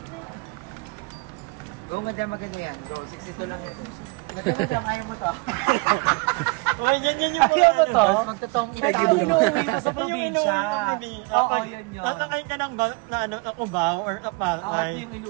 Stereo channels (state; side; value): quieter; left; 27.7 dB